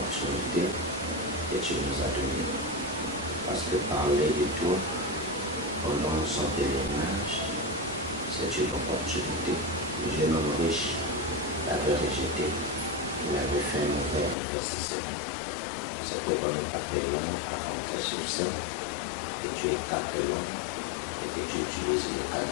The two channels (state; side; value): drops out; right; at 14.4 s